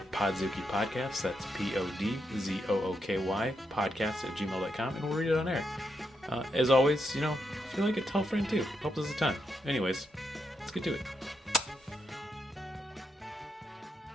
Podzooky Podcast. That's Podzooky podcast@gmail.com, and we'll read it on air. As always, if you like it, tell a friend too. Helps us a ton. Anyways, let's get to it.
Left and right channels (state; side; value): normal; both; correlation 0.82